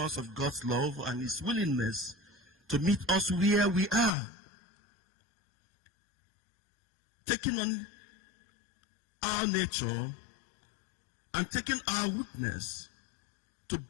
of God's love and his willingness to meet us where we are, taking on our nature and taking our weakness to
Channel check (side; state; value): right; drops out; at 4.1 s